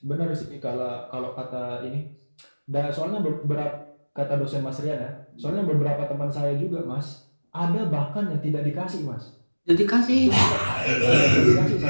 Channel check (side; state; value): both; inverted; correlation -1.00